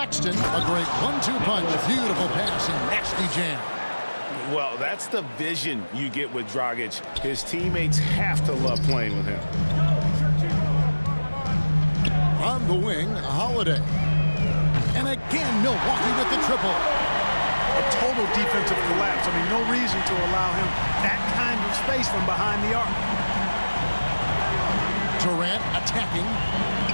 a great 1-2 punch, beautiful pass and nasty jam. Well, that's the vision you get with Dragic. His teammates have to love playing with him. On the wing, Holiday. And again, Milwaukee with the triple. A total defensive collapse. I mean, no reason to allow him that kind of space from behind the arc. Durant attacking.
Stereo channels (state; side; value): inverted; both; correlation -1.00